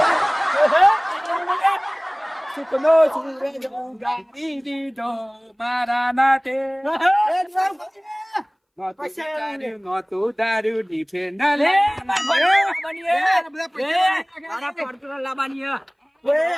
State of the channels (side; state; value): both; identical; correlation 1.00